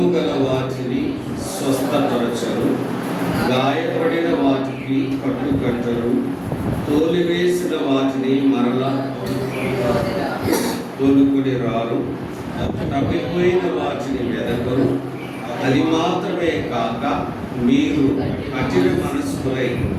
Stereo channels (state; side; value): identical; both; correlation 1.00